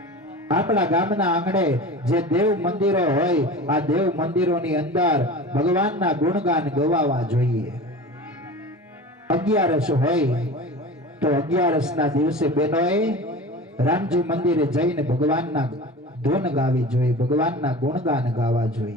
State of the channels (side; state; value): both; normal; correlation 0.34